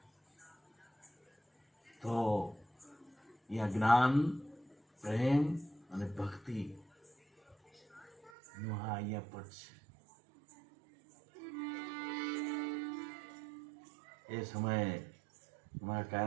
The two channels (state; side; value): drops out; left; at 8.3 s